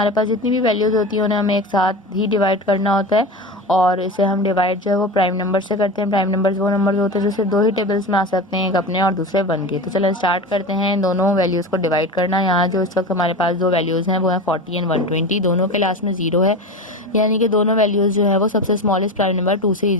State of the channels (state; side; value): normal; both; correlation 0.27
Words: पास जितनी भी वैल्यूज़ होती हैं उन्हें हमें एक साथ ही डिवाइड करना होता है, और इसे हम डिवाइड जो है वो प्राइम नंबर से करते हैं। प्राइम नंबर्स वो नंबर्स होते हैं जो सिर्फ दो ही टेबल्स में आ सकते हैं, एक अपने और दूसरे वन के। तो चलो स्टार्ट करते हैं दोनों वैल्यूज़ को डिवाइड करना। यहाँ जो इस वक्त हमारे पास दो वैल्यूज़ हैं वो हैं 40 एंड 120। दोनों के लास्ट में 0 है, यानी कि दोनों वैल्यूज़ जो है वो सबसे स्मॉलेस्ट प्राइम नंबर 2 से